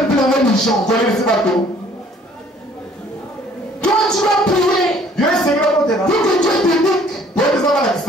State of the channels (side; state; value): both; normal; correlation 0.57